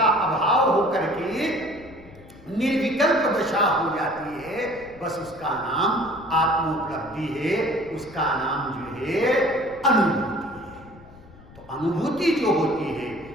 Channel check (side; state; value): left; noise; rumble, 21 dB below the sound